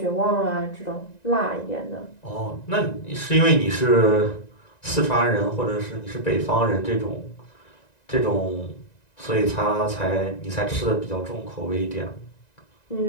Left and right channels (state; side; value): late; right; 1.9 ms